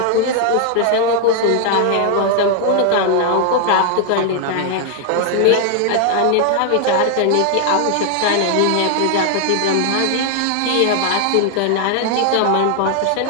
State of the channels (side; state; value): both; different; correlation 0.00